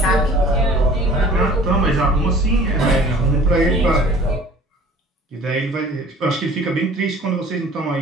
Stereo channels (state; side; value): normal; both; correlation 0.48